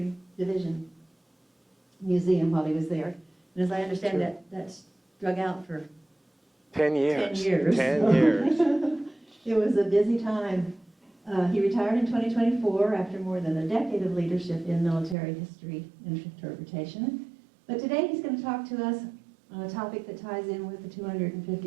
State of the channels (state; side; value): drops out; left; at 15.2 s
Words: Division Museum while he was there. And as I understand, that's drug out for 10 years. 10 years. 10 years. It was a busy time. He retired in 2024 after more than a decade of leadership in military history and interpretation. But today he's going to talk to us on a topic that ties in with the